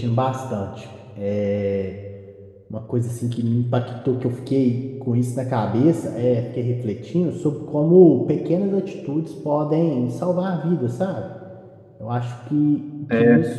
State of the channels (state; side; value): identical; both; correlation 1.00